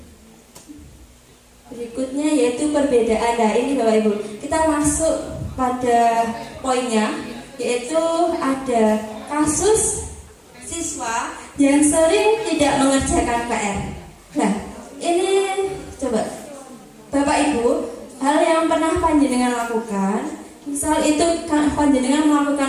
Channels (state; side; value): identical; both; correlation 1.00